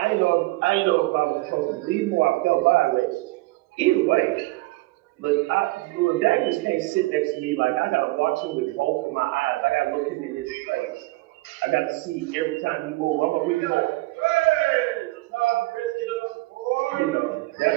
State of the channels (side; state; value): left; quieter; 20.8 dB